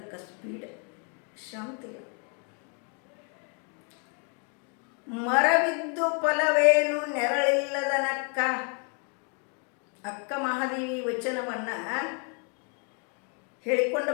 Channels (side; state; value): right; quieter; 37.9 dB